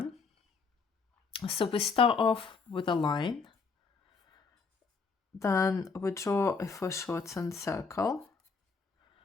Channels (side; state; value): right; quieter; 4.9 dB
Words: So we start off with a line, then we draw a foreshortened circle,